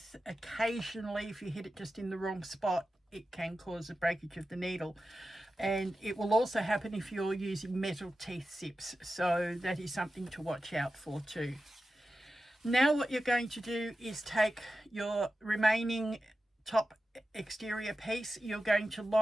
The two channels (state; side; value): normal; both; correlation 0.92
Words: occasionally if you hit it just in the wrong spot, it can cause a breakage of the needle. And it will also happen if you're using metal teeth zips. So that is something to watch out for too. Now what you're going to do is take your remaining top exterior piece. You're going to